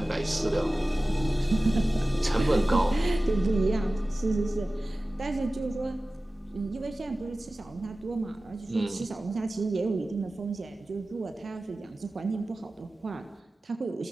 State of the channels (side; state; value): both; normal; correlation 0.96